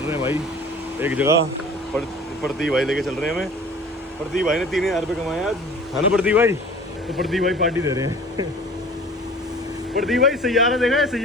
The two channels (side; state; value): both; normal; correlation 0.45